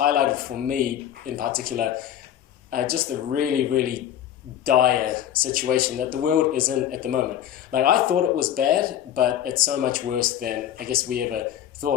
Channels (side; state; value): right; quieter; 10.8 dB